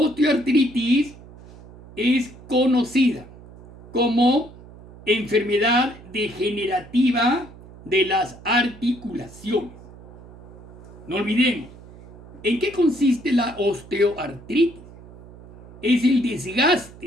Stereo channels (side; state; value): right; noise; hum, 19 dB below the sound